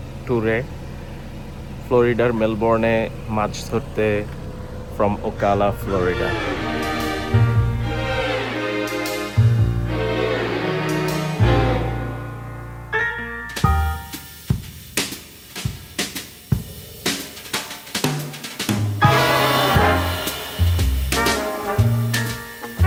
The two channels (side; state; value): both; identical; correlation 1.00